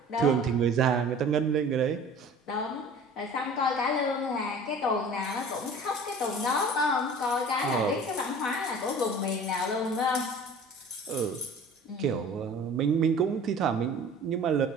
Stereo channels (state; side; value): normal; both; correlation 0.44